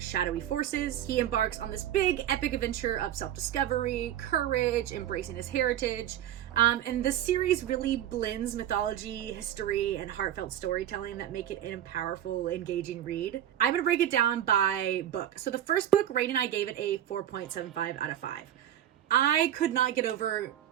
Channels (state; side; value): quieter; left; 11.4 dB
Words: forces. He embarks on this big epic adventure of self-discovery, courage, embracing his heritage, and this series really blends mythology, history, and heartfelt storytelling that make it a powerful, engaging read. I'm gonna break it down by book. So the first book, Rain and I gave it a 4.75 out of 5. I could not get over